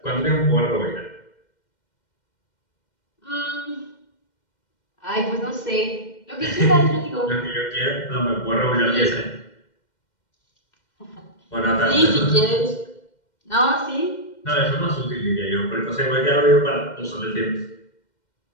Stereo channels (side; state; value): right; late; 2.1 ms